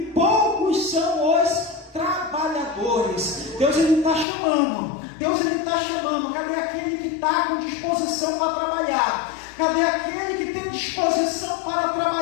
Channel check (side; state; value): right; drops out; at 4.2 s